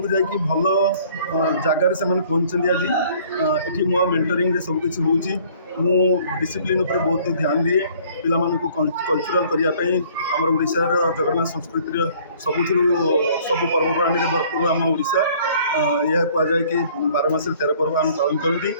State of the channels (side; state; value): both; inverted; correlation -0.56